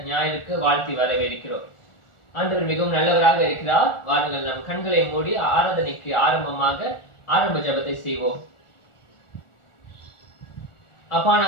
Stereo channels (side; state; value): right; late; 1.4 ms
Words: ஞாயிற்கு வாழ்த்தி வரவேற்கிறோம். ஆண்டவர் மிகவும் நல்லவராக இருக்கிறார். வாருங்கள் நம் கண்களை மூடி ஆராதனைக்கு ஆரம்ப ஜெபத்தை செய்வோம். அப்பா,